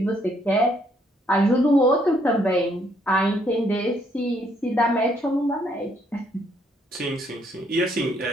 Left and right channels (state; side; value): normal; both; correlation 0.70